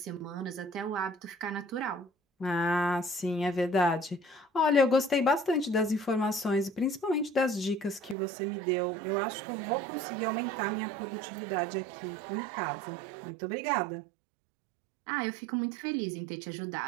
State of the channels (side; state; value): left; drops out; at 8.2 s